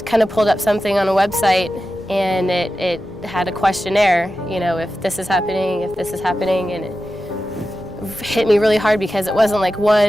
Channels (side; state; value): both; normal; correlation 0.92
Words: kind of pulled up something on a website, and it had a questionnaire, if this is happening, and it hit me really hard because it wasn't like